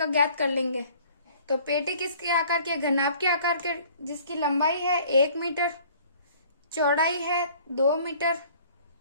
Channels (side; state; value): both; inverted; correlation -0.53